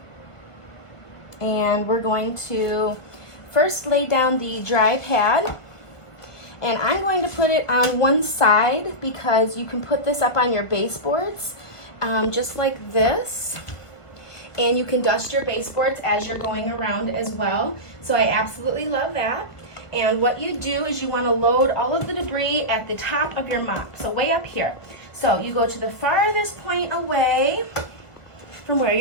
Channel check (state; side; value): late; right; 1.5 ms